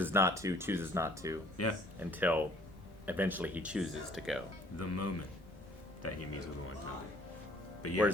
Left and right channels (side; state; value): both; normal; correlation 0.57